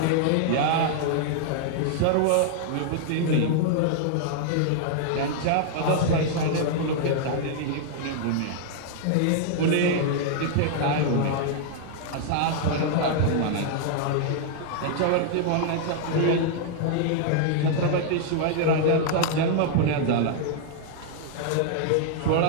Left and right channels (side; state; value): both; different; correlation -0.01